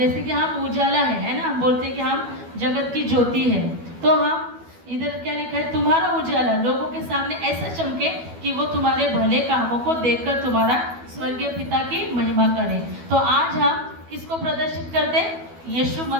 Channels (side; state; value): left; late; 12 ms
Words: कि हम उजाला है ना, हम बोलते हैं कि हम जगत की ज्योति है, तो हम इधर क्या लिखा है, तुम्हारा उजाला लोगों के सामने ऐसा चमके कि वो तुम्हारे भले कामों को देखकर तुम्हारा स्वर्गीय पिता की महिमा करे। तो आज हम किसको प्रदर्शित करते हैं? यीशु